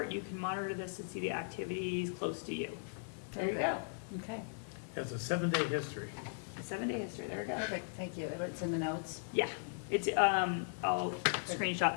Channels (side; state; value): right; silent; digital silence